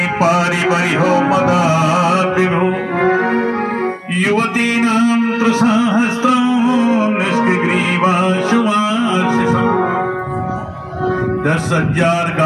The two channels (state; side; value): identical; both; correlation 1.00